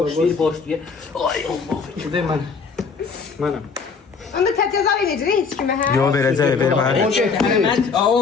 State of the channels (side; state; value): right; quieter; 5.2 dB